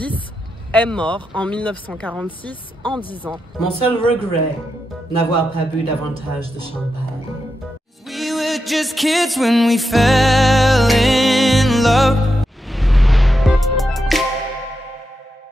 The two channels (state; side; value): normal; both; correlation 0.87